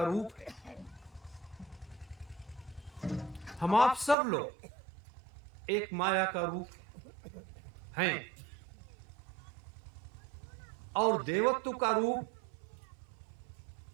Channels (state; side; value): drops out; left; at 4.2 s